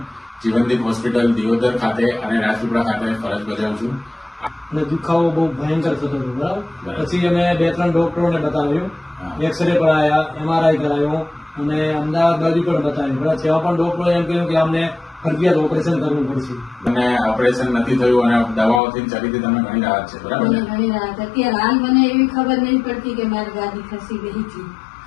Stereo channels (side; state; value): right; drops out; at 18.8 s